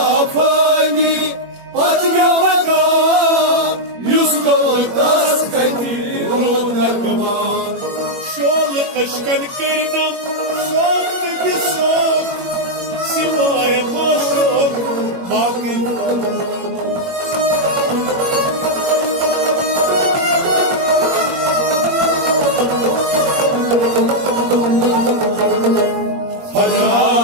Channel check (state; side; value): late; left; 21 ms